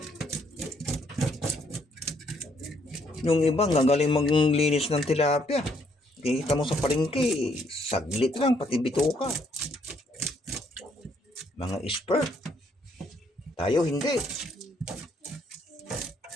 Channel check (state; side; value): normal; both; correlation 0.70